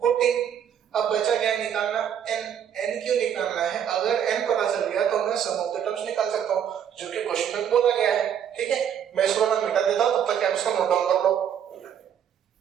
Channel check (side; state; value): left; quieter; 8.9 dB